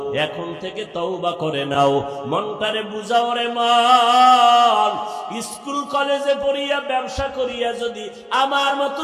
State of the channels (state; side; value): identical; both; correlation 1.00